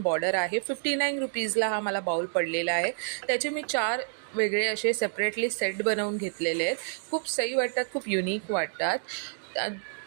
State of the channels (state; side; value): silent; left; digital silence